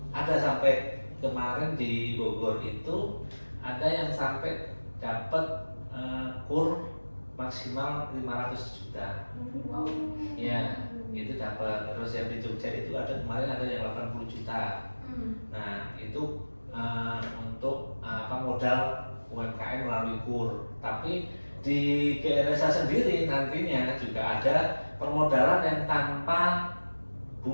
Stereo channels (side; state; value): both; inverted; correlation -1.00